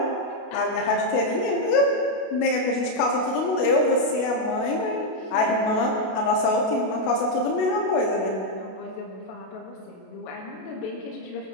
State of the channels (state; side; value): late; right; 32 ms